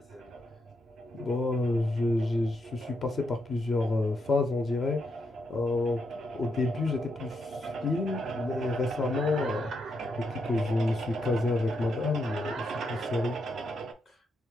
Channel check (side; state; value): both; normal; correlation 0.81